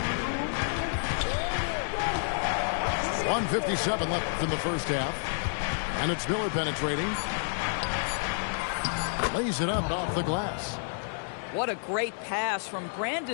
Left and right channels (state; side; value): silent; right; digital silence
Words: 1:57 left in the first half. And it's Miller penetrating. Lays it up off the glass. What a great pass from